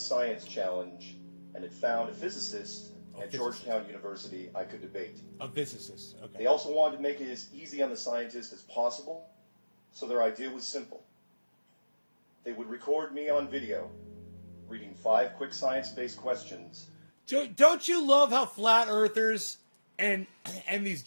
challenge and had found a physicist at Georgetown University I could debate. A physicist, okay. They also wanted to make it as easy on the scientist as possible, so their idea was simple. They would record me on video reading 5 quick science-based questions. Don't you love how flat earthers and these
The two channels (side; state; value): both; inverted; correlation -1.00